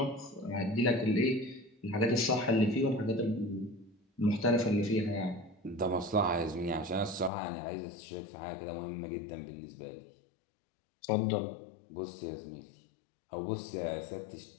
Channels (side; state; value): right; drops out; at 7.3 s